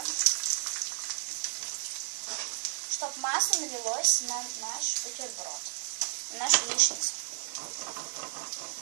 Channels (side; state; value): left; silent; digital silence